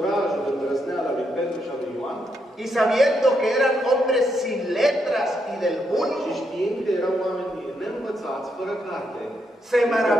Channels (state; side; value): normal; both; correlation 0.79